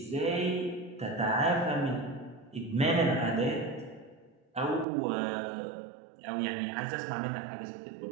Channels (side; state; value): left; drops out; at 4.9 s